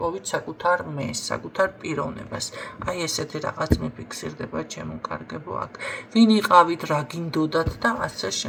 საკუთარ მეს, საკუთარ პიროვნებას. აი ესეთი რაღაც მიფიქსირდება ჩემო კარგებო აქ. ვინ იყავით, რა გინდოდათ და ასე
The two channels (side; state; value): both; identical; correlation 1.00